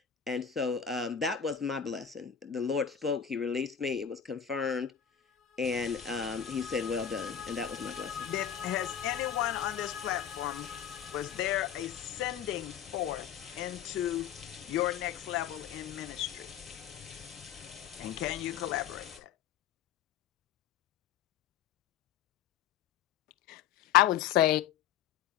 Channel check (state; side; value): quieter; right; 8.9 dB